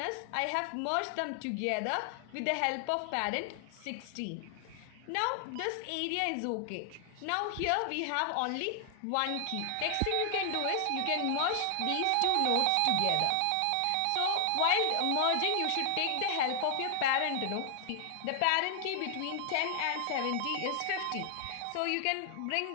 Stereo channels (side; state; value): both; different; correlation 0.00